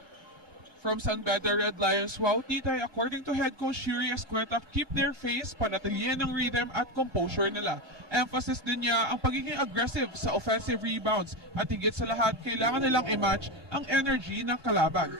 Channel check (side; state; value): left; late; 1.2 ms